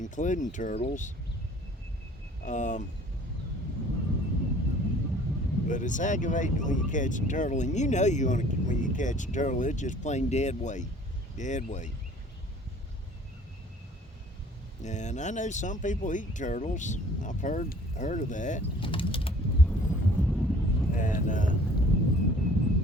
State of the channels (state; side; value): normal; both; correlation 0.53